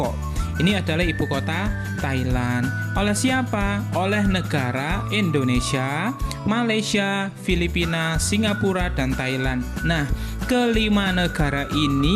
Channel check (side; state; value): both; identical; correlation 1.00